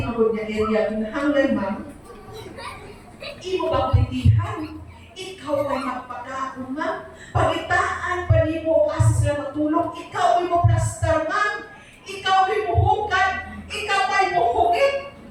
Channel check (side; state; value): both; identical; correlation 1.00